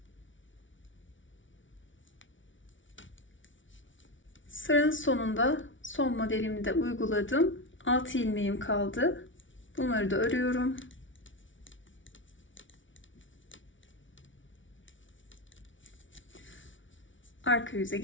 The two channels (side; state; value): right; late; 0.56 ms